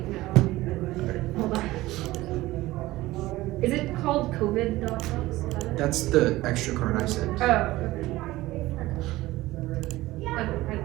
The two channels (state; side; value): quieter; left; 17.9 dB